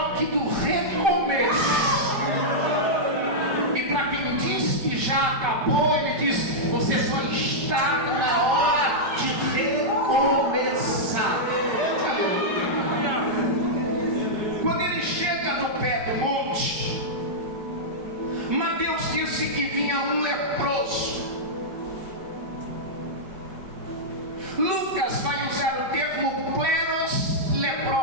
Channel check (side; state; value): left; late; 5.3 ms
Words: do recomeço. E para quem diz que já acabou, ele diz: você só está na hora de recomeçar. Quando ele chega no pé do monte, Mateus disse que vinha um leproso. Lucas vai usar o termo kleros